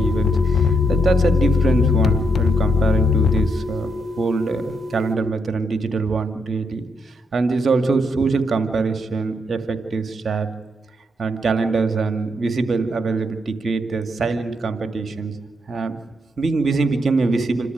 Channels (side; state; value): both; normal; correlation 0.77